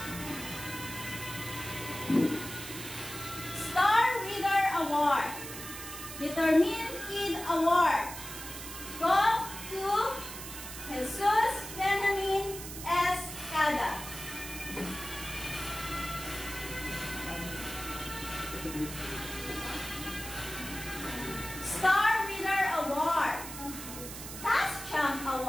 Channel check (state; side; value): noise; right; hiss, 10 dB below the sound